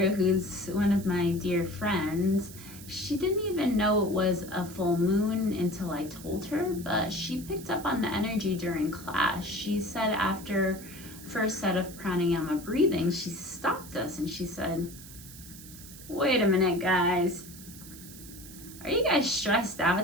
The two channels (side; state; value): right; noise; hiss, 16 dB below the sound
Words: who's one of my dear friends, she didn't even know it was a full moon until I told her, but she picked up on the energy during class. She said after first set of pranayama breathing, she stopped us and she said, wait a minute, guys. Are you guys stressed